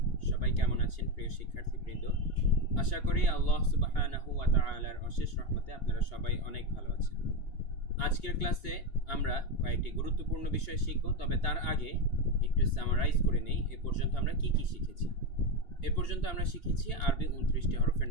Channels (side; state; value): right; late; 2.8 ms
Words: সবাই কেমন আছেন প্রিয় শিক্ষার্থীবৃন্দ? আশা করি আল্লাহ সুবহানাহু ওয়া তাআলার অশেষ রহমতে আপনারা সবাই অনেক ভালো আছেন। আজকের ক্লাসে আমরা কয়েকটি গুরুত্বপূর্ণ বিষয় শিখব, তবে তার আগে একটু সামারাইজ করে নেই এ পর্যন্ত আমরা কি কি শিখেছি। এ পর্যন্ত আমরা শিখেছি আরবি 29টি হরফের